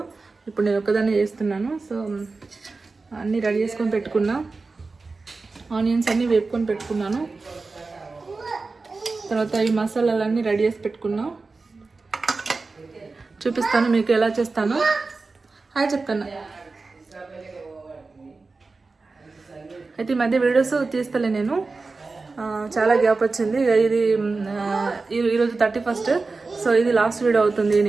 ఇప్పుడు నేను ఒక్కదాన్ని చేస్తున్నాను. సో అన్నీ రెడీ చేసుకొని పెట్టుకున్నా. ఆనియన్స్ అన్నీ వేపుకొని పెట్టుకున్నాను. తర్వాత ఈ మసాలాలన్నీ రెడీ చేసి పెట్టుకున్నా. చూపిస్తాను మీకు ఎలా చేస్తాను. హాయ్ చెప్తాను. అయితే ఈ మధ్య వీడియోస్ తీస్తలే నేను, చాలా గ్యాప్ వచ్చింది. ఇది ఈరోజు 31st. సో ఇది లాస్ట్ వీడియో అవుతుంది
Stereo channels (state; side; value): quieter; left; 3.9 dB